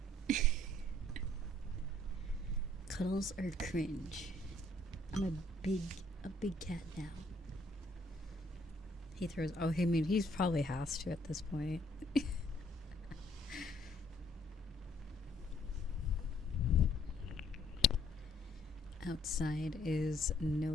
Cuddles are cringe. I'm a big cat now. He throws. Oh, I mean, he's probably has to at this point. Outside is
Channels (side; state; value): both; normal; correlation 0.64